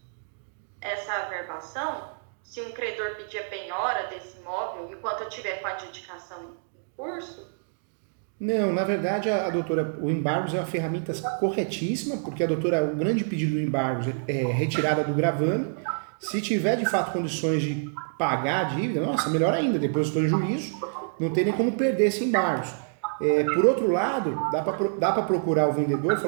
essa averbação? Se um credor pedir a penhora desse imóvel, enquanto eu estiver com a adjudicação em curso? Não, na verdade, a doutora, o embargos é uma ferramenta corretíssima, porque a doutora, o grande pedido do embargos é retirada do gravame. Se tiver, de fato, condições de pagar a dívida, nossa, melhor ainda, depositou em juízo, não tem nem como perder esse embargos. Por outro lado, dá para procurar o vendedor e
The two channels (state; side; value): silent; left; digital silence